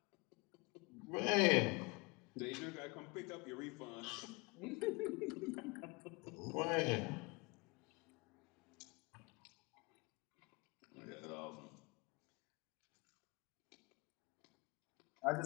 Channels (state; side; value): quieter; right; 27.7 dB